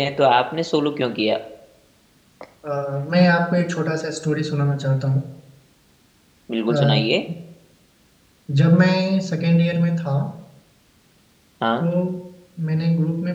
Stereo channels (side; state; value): both; identical; correlation 1.00